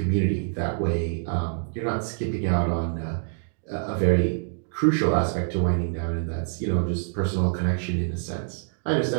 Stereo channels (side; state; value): left; silent; digital silence